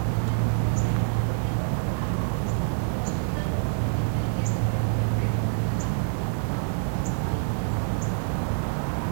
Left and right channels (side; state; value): left; silent; digital silence